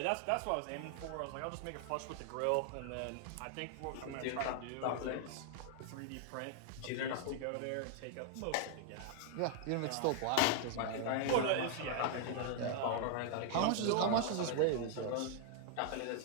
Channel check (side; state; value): both; different; correlation 0.00